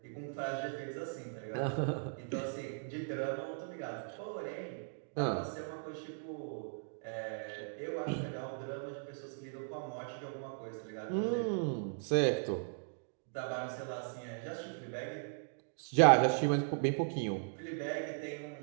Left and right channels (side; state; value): left; silent; digital silence